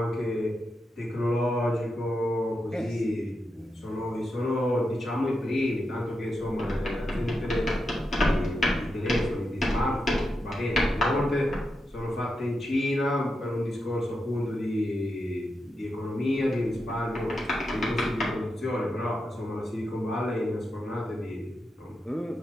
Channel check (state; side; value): normal; both; correlation 0.87